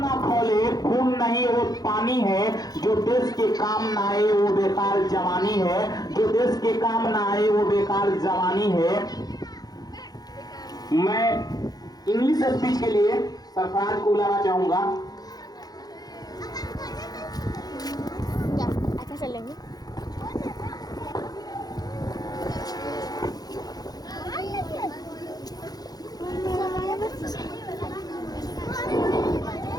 खोले खून नहीं वो पानी है। जो देश के काम ना आए वो बेकार जवानी है, जो देश के काम ना आए वो बेकार जवानी है। मैं इंग्लिश स्पीच के लिए सरफराज को बुलाना चाहूंगा। अच्छा चलेंगे।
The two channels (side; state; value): right; late; 0.19 ms